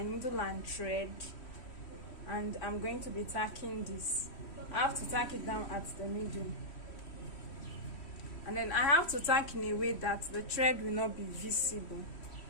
needle and thread, and I'm going to be tacking this. I have to tack it down at the middle, and then I have to tack in a way that the thread will not be visible.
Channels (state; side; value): late; right; 3.1 ms